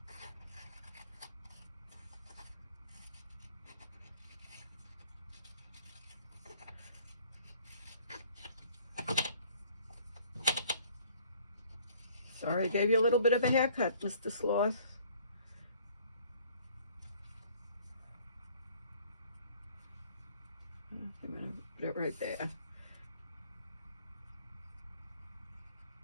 Sorry I gave you a little bit of a haircut, Mr. Sloth. I'm going to put it right there.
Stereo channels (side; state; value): both; inverted; correlation -0.56